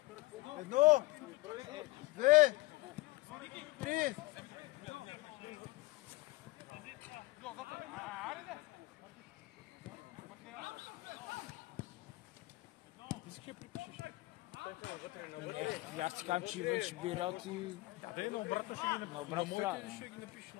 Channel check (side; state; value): right; quieter; 21.0 dB